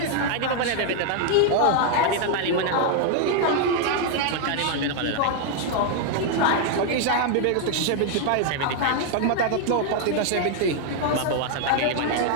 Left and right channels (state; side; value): different; both; correlation 0.00